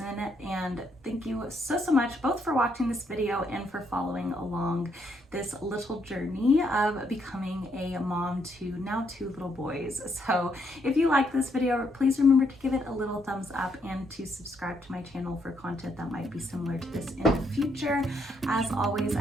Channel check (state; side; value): normal; both; correlation 0.74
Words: And thank you so much both for watching this video and for following along this little journey of becoming a mom to now 2 little boys. So if you like this video, please remember to give it a little thumbs up and to subscribe to my channel for content that might be similar to this in the future. As always, I